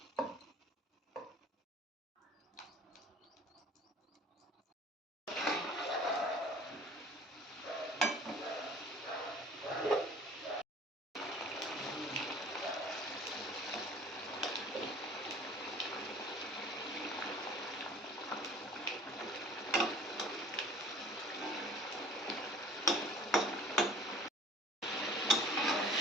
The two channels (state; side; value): normal; both; correlation 0.48